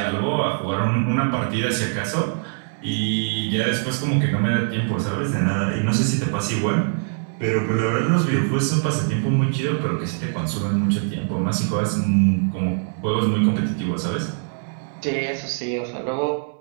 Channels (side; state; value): left; silent; 64 dB below the other